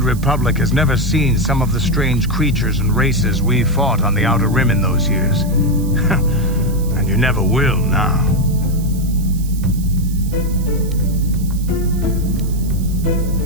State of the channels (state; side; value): noise; right; hiss, 18 dB below the sound